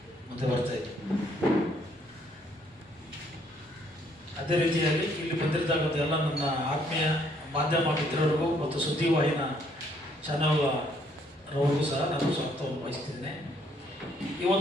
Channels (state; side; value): normal; both; correlation 0.67